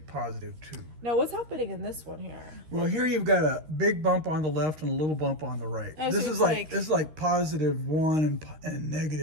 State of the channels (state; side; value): late; left; 13 ms